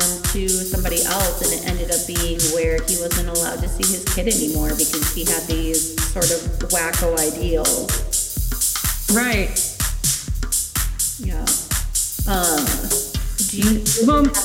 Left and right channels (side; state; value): both; identical; correlation 1.00